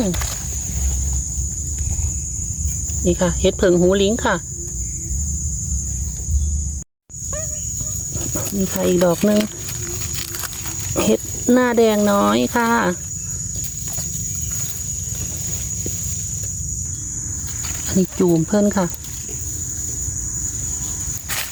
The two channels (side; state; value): both; identical; correlation 1.00